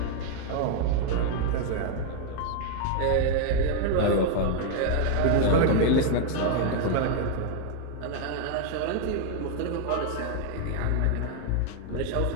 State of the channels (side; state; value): both; different; correlation 0.00